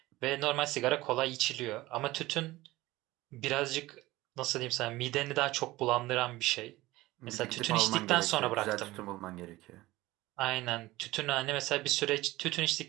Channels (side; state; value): left; quieter; 18.6 dB